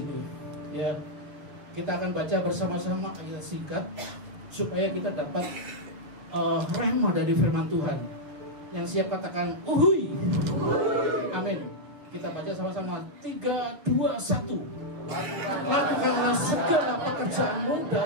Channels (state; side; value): late; left; 6.9 ms